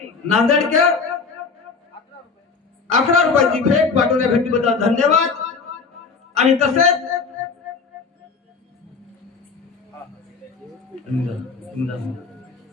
नांदेडकर 11 रुपयाची भेट पाठवल्या भेटीबद्दल धन्यवाद. आणि तसेच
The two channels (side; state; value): right; quieter; 5.0 dB